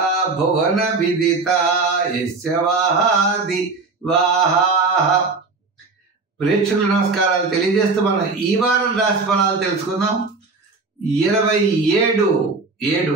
భువన విదిత యస్య వాహాది వాహాః. ప్రేక్షకుల నమస్కారాలు తెలియజేస్తూ మనం ఈ వారం రాశి ఫలాలు తెలుసుకుందాం.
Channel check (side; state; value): left; quieter; 4.0 dB